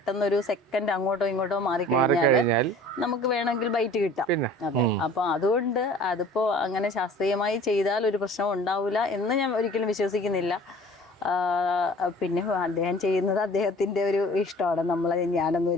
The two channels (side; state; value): both; normal; correlation 0.47